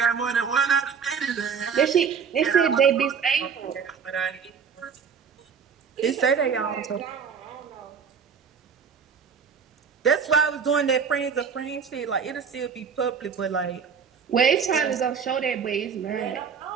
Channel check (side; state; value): left; quieter; 6.5 dB